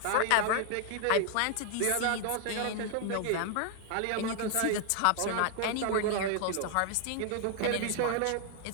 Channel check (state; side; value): different; both; correlation 0.00